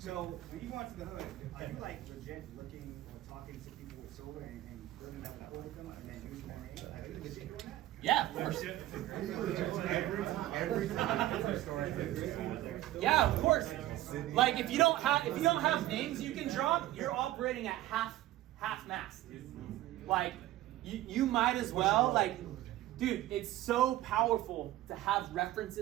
when you go out to the hood, are you like legit looking or talking to people with solar and building that rapport with them and then using their name? Like, are you legit doing that? Yeah, of course. every time. Yeah, of course. Like if you don't have names you can drop, you're operating at half mast. Like you might as well like, dude, it's so powerful to have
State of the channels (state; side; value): quieter; left; 15.3 dB